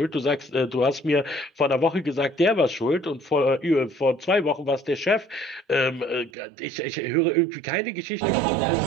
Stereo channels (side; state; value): left; drops out; at 6.3 s